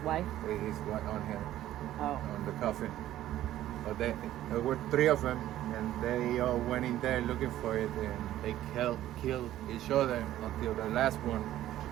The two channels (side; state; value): left; quieter; 13.3 dB